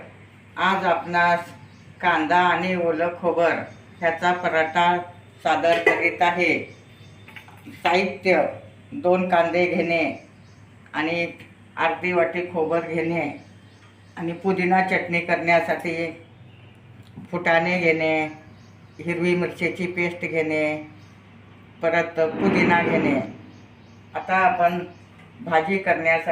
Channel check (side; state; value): both; identical; correlation 1.00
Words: आज आपणास कांदा आणि ओलं खोबर ह्याचा पराठा सादर करीत आहे. साहित्य: 2 कांदे घेणे आणि अर्धी वाटी खोबर घेणे आणि पुदिना चटणी करण्यासाठी फुटाणे घेणे, हिरवी मिरचीची पेस्ट घेणे, परत पुदिना घेणे. आता आपण भाजी